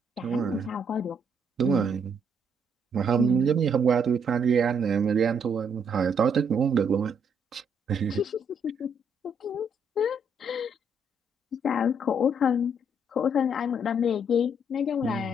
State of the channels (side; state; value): both; normal; correlation 0.71